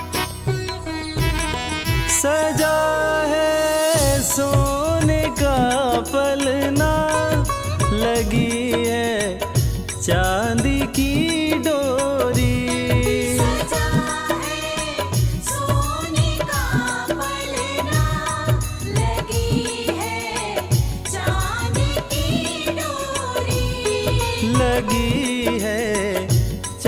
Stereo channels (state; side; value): identical; both; correlation 1.00